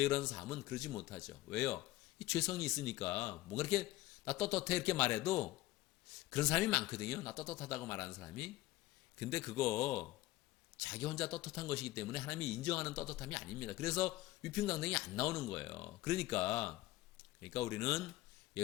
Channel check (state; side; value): quieter; right; 17.5 dB